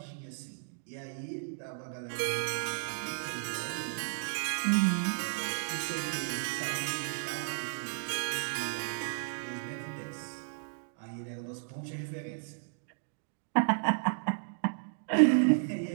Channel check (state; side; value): silent; left; digital silence